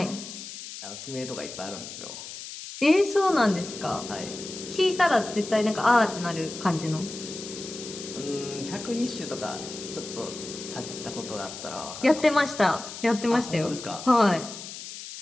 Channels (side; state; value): left; noise; hiss, 11 dB below the sound